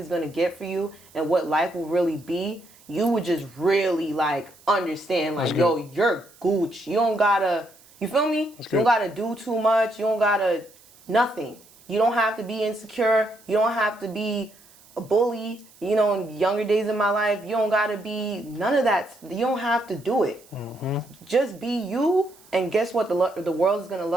going to get for you and what life will really be, you would just really, like, understand, like, yo, you're Gucci. You don't gotta, you feel me? You don't gotta do too much. You don't gotta, nothing. You don't have to be insecure. You don't have to be a bully. You know, in younger days of my life, you don't gotta be none of that. You don't have to do it. Just be you, and guess what? The world is gonna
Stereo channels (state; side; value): noise; right; hiss, 26 dB below the sound